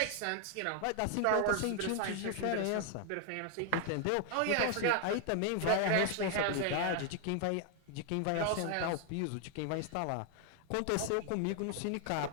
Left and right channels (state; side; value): different; both; correlation 0.00